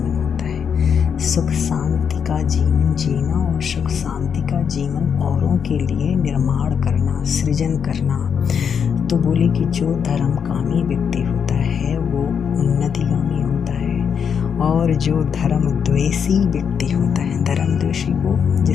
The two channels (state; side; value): quieter; right; 7.1 dB